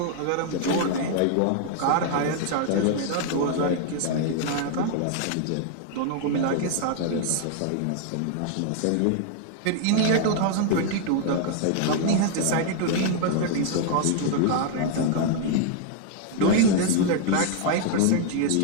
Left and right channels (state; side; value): different; both; correlation 0.00